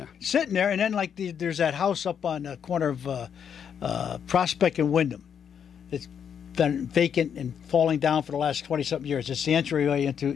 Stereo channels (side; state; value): right; quieter; 7.9 dB